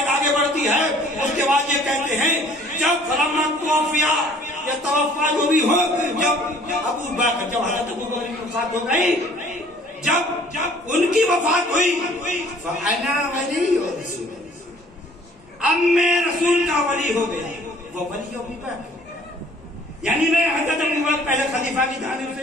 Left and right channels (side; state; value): both; normal; correlation 0.55